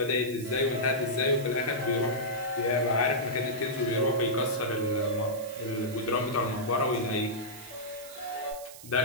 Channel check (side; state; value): right; noise; hiss, 16 dB below the sound